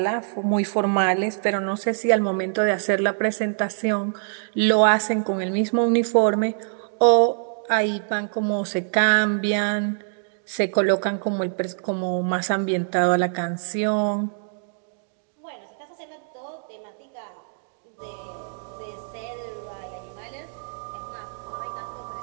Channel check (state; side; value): silent; left; digital silence